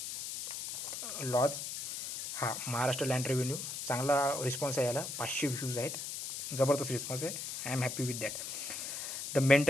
लॉज, महाराष्ट्र लँड रेव्हेन्यू, चांगला रिस्पॉन्स आहे याला, 500 व्ह्यूज आहेत, जबरदस्त रिस्पॉन्स आहे. I am happy with that. The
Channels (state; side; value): noise; left; hiss, 6 dB below the sound